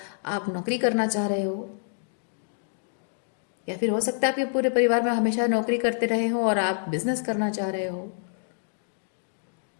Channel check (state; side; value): silent; right; digital silence